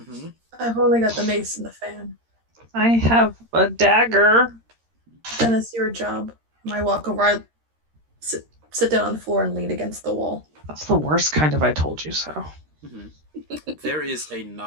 I've only got the mace and the fan. I have a dagger. Then it's your job. I walk over, I sit down on the floor and lean against the wall. That's the worst kind of I told you so. Mm-hmm. There is a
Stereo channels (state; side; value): late; left; 13 ms